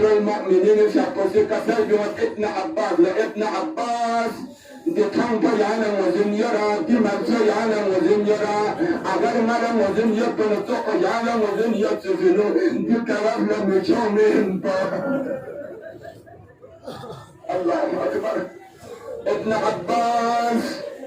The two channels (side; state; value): both; identical; correlation 1.00